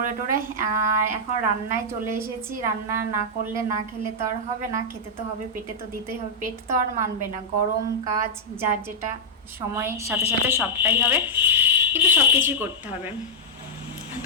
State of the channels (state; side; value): normal; both; correlation -0.07